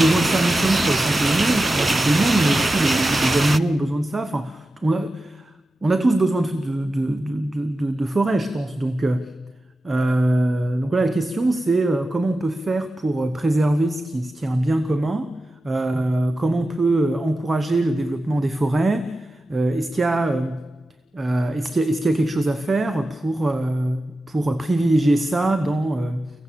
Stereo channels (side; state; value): both; normal; correlation 0.93